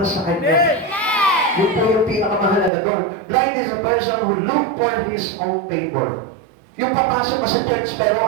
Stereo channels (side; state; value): left; drops out; at 2.7 s